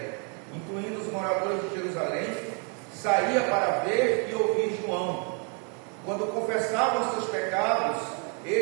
incluindo os moradores de Jerusalém, saía para ver e ouvir João. Quando confessavam seus pecados,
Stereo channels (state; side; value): quieter; left; 37.9 dB